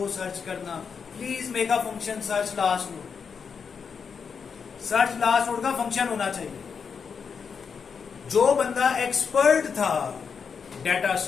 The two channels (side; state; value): right; quieter; 6.1 dB